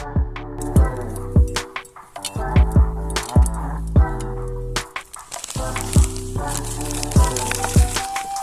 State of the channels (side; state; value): both; identical; correlation 1.00